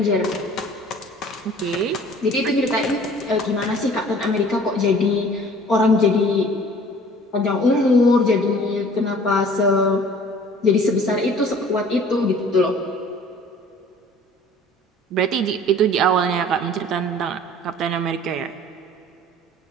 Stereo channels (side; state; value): both; normal; correlation 0.49